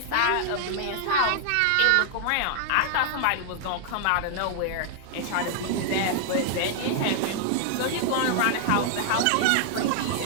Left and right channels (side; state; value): both; different; correlation 0.00